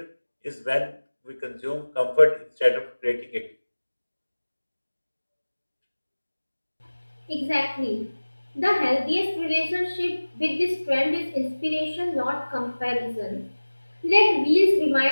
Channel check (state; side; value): inverted; both; correlation -1.00